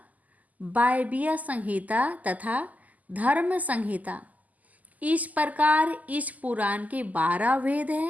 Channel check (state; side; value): late; left; 0.078 ms